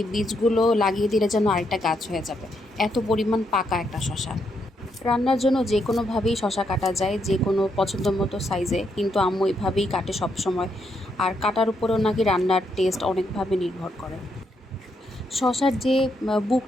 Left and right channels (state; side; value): normal; both; correlation 0.78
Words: বীজগুলো লাগিয়ে দিলে যেন আরেকটা গাছ হয়ে যাবে, এত পরিমাণ পাকা একটা শসা। রান্নার জন্য যে কোনোভাবেই শসা কাটা যায়, যে কোনো পছন্দ মতো সাইজে, কিন্তু আম্মু এভাবেই কাটে সব সময়। আর কাটার উপরেও নাকি রান্নার টেস্ট অনেকভাবে নির্ভর করে। শসার যে